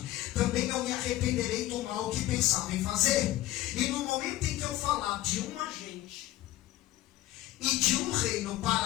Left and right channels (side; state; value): right; quieter; 15.3 dB